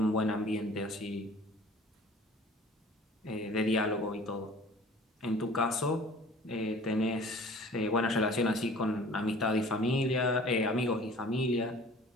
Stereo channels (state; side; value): normal; both; correlation 0.47